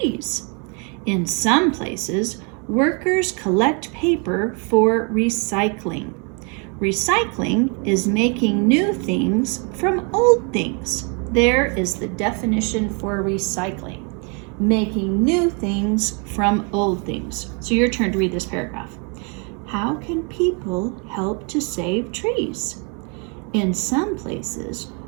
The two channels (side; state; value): left; quieter; 35.4 dB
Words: In some places, workers collect paper for recycling. Recycling is making new things from old things. There is the definition for recycling. Making new things from old things. So your turn to read this paragraph. How can people help to save trees? In some places,